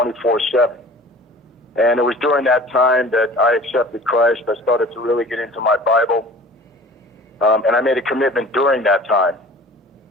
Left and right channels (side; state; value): both; normal; correlation 0.44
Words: And it was during that time that I accepted Christ. I started to really get into my Bible. And I made a commitment during that time.